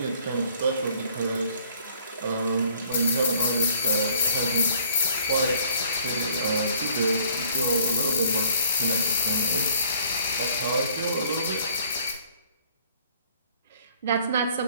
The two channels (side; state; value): both; inverted; correlation -0.58